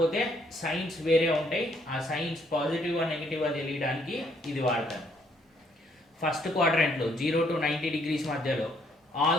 సైన్స్ వేరే ఉంటాయి. ఆ సైన్స్ పాజిటివ్ నెగిటివ్ తెలియడానికి ఇది వాడతాను. ఫస్ట్ క్వాడ్రంట్లో 0 టు 90 డిగ్రీస్ మధ్యలో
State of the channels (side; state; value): both; normal; correlation 0.68